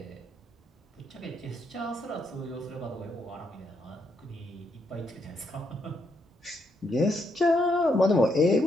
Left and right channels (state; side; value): normal; both; correlation 0.77